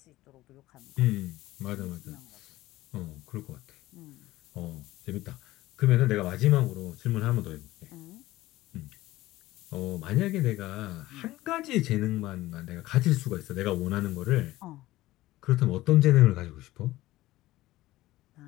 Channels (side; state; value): right; quieter; 16.9 dB